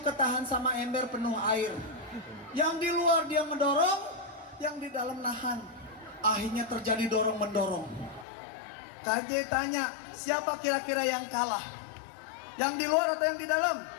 ketahan sama ember penuh air. Yang di luar dia mendorong, yang di dalam nahan. Akhirnya terjadi dorong-mendorong. KJ tanya, siapa kira-kira yang kalah? Yang di luar atau yang di dalam?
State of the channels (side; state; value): right; drops out; at 8.2 s